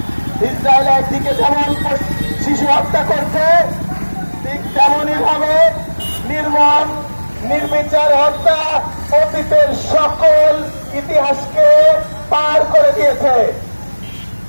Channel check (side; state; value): both; inverted; correlation -1.00